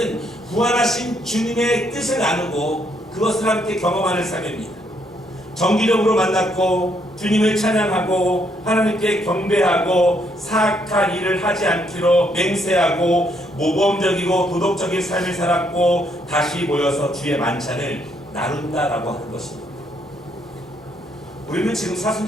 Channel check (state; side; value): normal; both; correlation 0.72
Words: 부활하신 주님의 뜻을 나누고 그것을 함께 경험하는 삶입니다. 정기적으로 만났고 주님을 찬양하고 하나님께 경배하고 사악한 일을 하지 않기로 맹세하고 모범적이고 도덕적인 삶을 살았고 다시 모여서 주의 만찬을 나눈다라고 하는 것입니다. 우리는 지금